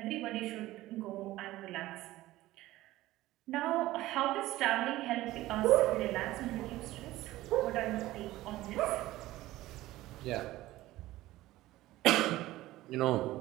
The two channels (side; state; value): left; quieter; 16.6 dB